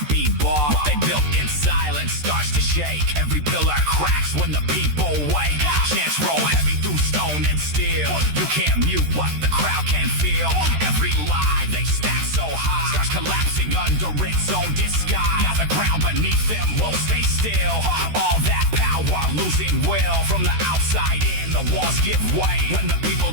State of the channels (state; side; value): late; left; 13 ms